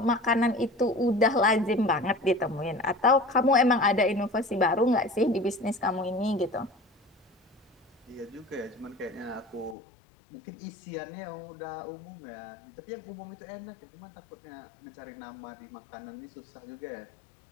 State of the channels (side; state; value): right; drops out; at 9.8 s